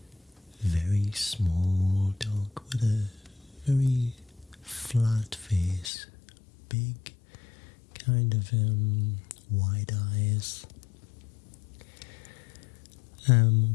Very small dog with a very flat face, big kind of wide eyes,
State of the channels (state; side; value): drops out; right; at 5.9 s